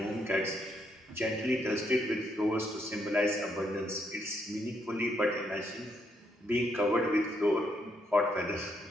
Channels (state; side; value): normal; both; correlation 0.76